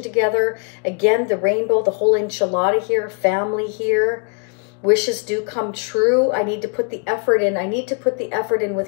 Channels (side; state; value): right; quieter; 37.8 dB